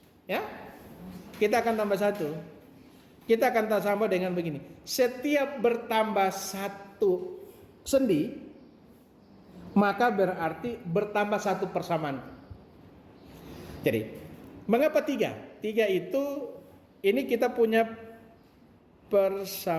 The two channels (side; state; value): both; identical; correlation 1.00